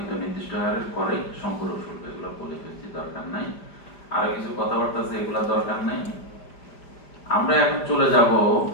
নির্দিষ্ট হারের করে সম্পূরক শুল্ক। এগুলো বলে ফেলছি, দরকার নাই। আরো কিছু কথাবার্তা আছে, এগুলা দরকার নাই। আমরা এখন চলে যাব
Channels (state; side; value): late; right; 5.0 ms